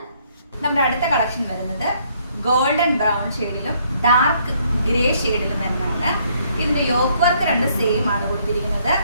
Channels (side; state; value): both; inverted; correlation -0.67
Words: നമ്മുടെ അടുത്ത കളക്ഷൻ വരുന്നത് ഗോൾഡൻ ബ്രൗൺ ഷെയ്ഡിലും ഡാർക്ക് ഗ്രേ ഷെയ്ഡിലും വരുന്നതാണ്. ഇതിന്റെ യോക്ക് വർക്ക് രണ്ട് സെയിം ആണ് കൊടുത്തിരിക്കുന്നത്.